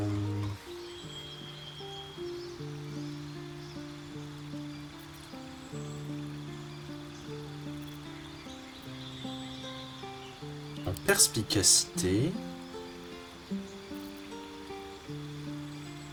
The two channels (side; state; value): both; identical; correlation 1.00